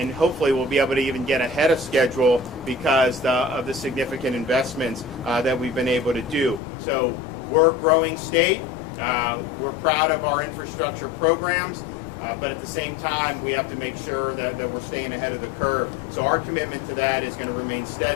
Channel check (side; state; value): right; drops out; at 6.6 s